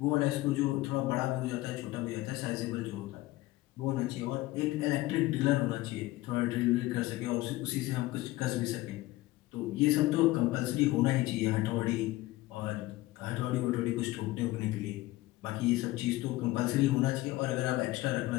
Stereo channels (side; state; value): right; quieter; 18.2 dB